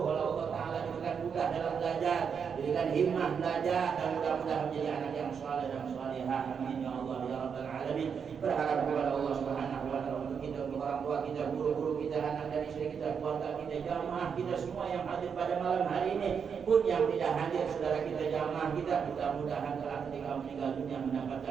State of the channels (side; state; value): left; quieter; 6.7 dB